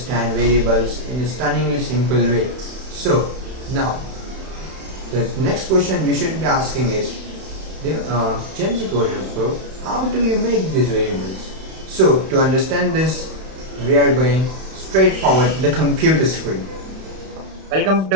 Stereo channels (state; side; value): late; left; 31 ms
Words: variables in a stunningly simple way. So now the next question you should be asking is, Gen Z Coder Pro, how do you make these variables? So to understand this, we are going straight forward to the computer screen. Welcome